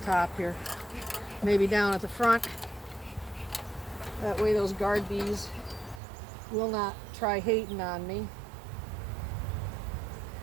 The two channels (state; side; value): drops out; left; at 6.0 s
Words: here. Maybe down at the front. That way those guard bees will not try hating on me.